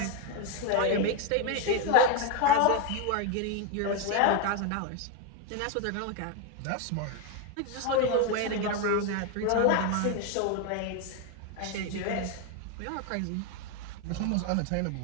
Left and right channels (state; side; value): different; both; correlation 0.01